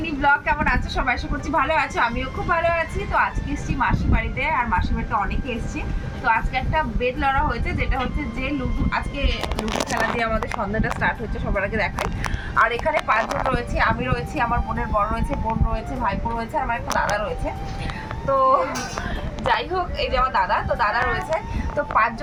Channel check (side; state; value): both; identical; correlation 1.00